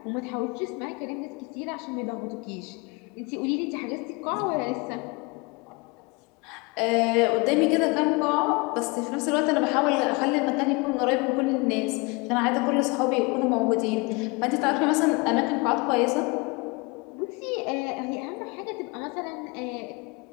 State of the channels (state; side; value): quieter; right; 27.2 dB